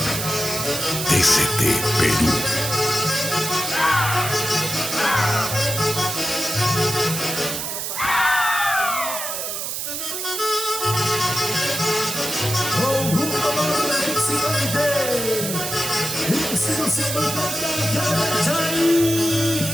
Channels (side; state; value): right; noise; hiss, 4 dB below the sound